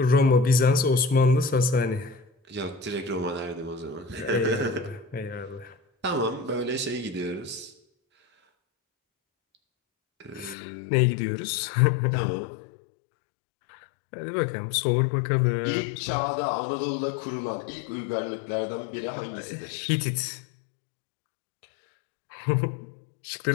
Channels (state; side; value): drops out; right; at 10.6 s